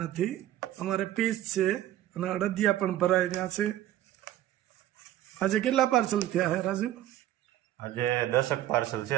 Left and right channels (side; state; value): left; quieter; 13.3 dB